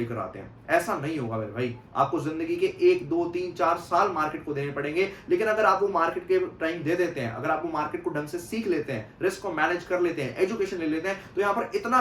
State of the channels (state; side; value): identical; both; correlation 1.00